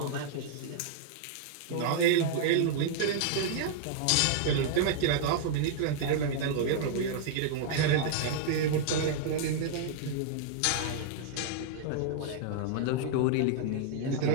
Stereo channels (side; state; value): both; different; correlation -0.01